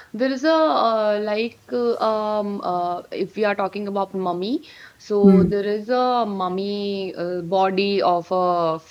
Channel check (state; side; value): identical; both; correlation 1.00